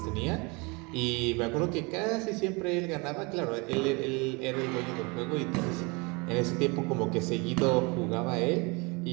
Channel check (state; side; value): quieter; left; 28.5 dB